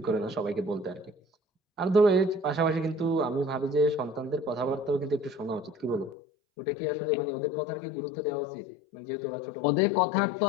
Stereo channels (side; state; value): right; drops out; at 6.2 s